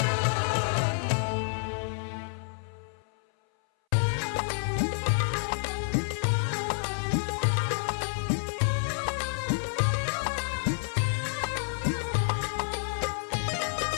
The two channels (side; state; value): right; silent; 58 dB below the other